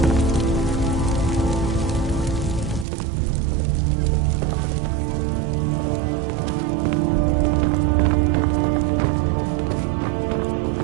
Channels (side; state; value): left; drops out; at 2.9 s